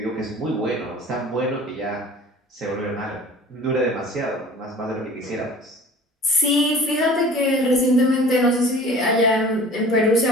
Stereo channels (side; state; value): both; normal; correlation 0.44